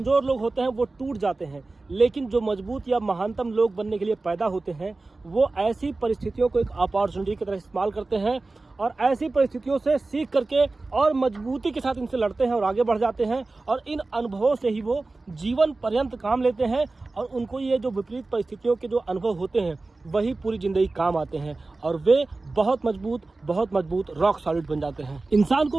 लोग होते हैं वो टूट जाते हैं, लेकिन जो मजबूत या महानतम लोग बनने के लिए पैदा होते हैं वो ऐसी परिस्थितियों को एक अपॉर्चुनिटी की तरह इस्तेमाल करते हैं और ऐसी परिस्थितियों से सीख करके और मजबूती के साथ इनसे लड़ते हैं और आगे बढ़ जाते हैं। और इन अनुभवों से ही वो जीवन पर्यंत काम लेते हैं और उनको ये जो विपरीत परिस्थितियों के जो अनुभव होते हैं वही पूरी जिंदगी काम आते हैं और वे बहुत मजबूत रॉक सॉलिड बन जाते हैं। इंसान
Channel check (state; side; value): quieter; left; 3.4 dB